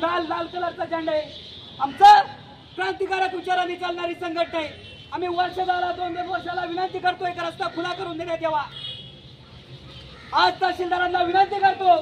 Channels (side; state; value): both; identical; correlation 1.00